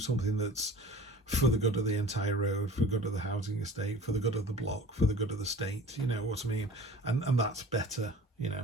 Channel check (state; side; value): normal; both; correlation 0.43